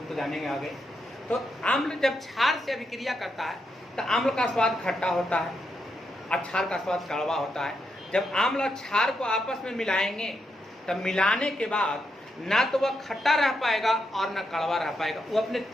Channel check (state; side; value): normal; both; correlation 0.82